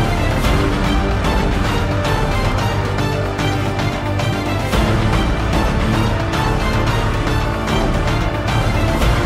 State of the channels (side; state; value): both; identical; correlation 1.00